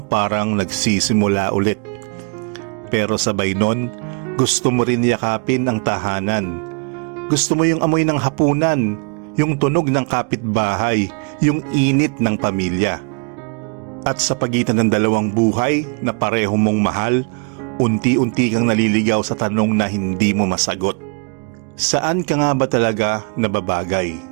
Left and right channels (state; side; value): quieter; left; 37.7 dB